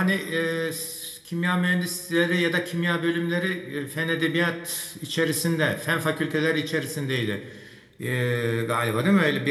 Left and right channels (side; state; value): both; identical; correlation 1.00